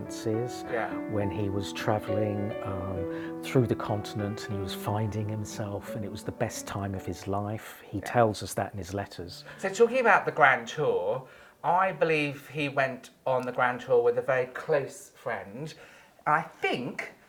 when he was travelling through the continent and he was finding himself, and it was the best time of his life. He tells us that in his letters. So talking about the Grand Tour, I believe he went on the Grand Tour with a very close friend. I think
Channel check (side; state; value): both; identical; correlation 1.00